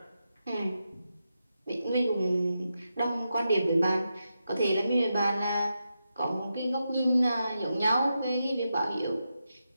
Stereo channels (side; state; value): both; inverted; correlation -0.87